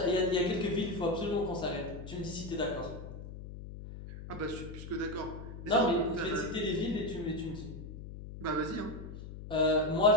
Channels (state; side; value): noise; left; hum, 11 dB below the sound